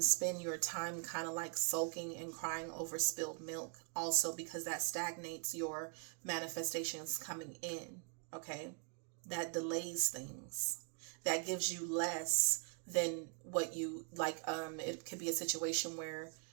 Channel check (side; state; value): left; quieter; 36.2 dB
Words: your time kind of like sulking and crying over spilled milk also, because that stagnates your manifestations coming in, okay? That delays things. That gives you less than what you like. It could be a situation where